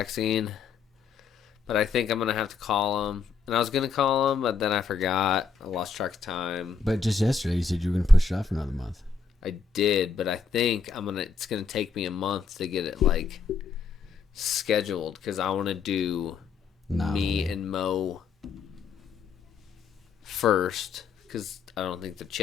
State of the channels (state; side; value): quieter; right; 5.2 dB